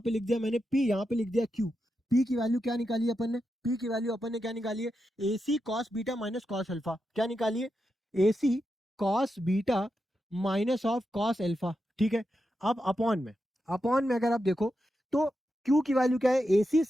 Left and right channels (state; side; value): normal; both; correlation 0.87